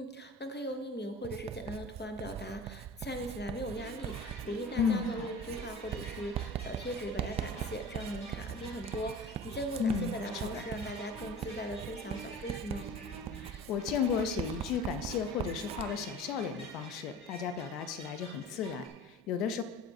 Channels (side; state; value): both; normal; correlation 0.40